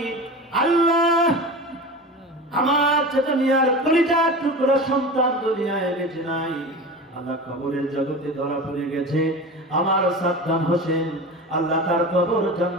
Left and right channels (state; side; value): normal; both; correlation 0.31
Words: আল্লাহ আমার চাচা মিয়ার কলিজার টুকরা সন্তান দুনিয়ায় বেঁচে নাই, আল্লাহ কবরের জগতে ধরা পড়ে গেছে। আমার সাদ্দাম হোসেন, আল্লাহ তার কবর